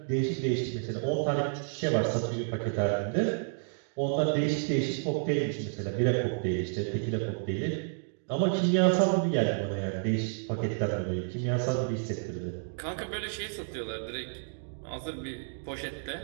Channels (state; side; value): silent; left; digital silence